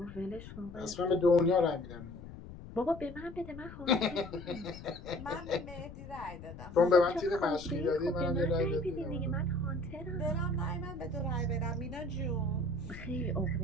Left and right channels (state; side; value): noise; left; rumble, 13 dB below the sound